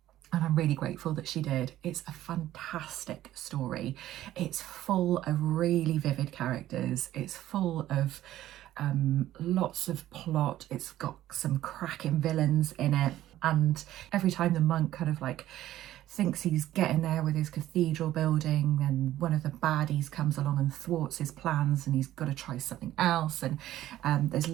and I'm really grateful that she did. It's a fantastic story. It's full of really vivid characters. It's full of lots of plot. It's got some cracking villains in it. And every time the monk kind of like thinks he's getting there with his cathedral building, and one of the baddies comes along and thwarts his plans, and he's got to try something else. And there's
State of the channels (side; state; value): left; quieter; 13.7 dB